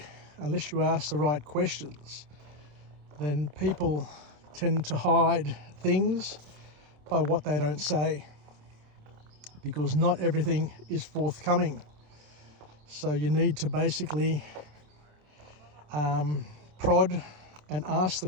unless you ask the right questions, then people tend to hide things by what they don't say, because not everything is forthcoming. So you need to basically prod and ask the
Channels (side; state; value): left; late; 27 ms